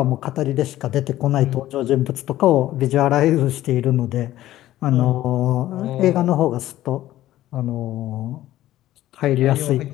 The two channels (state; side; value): quieter; right; 14.3 dB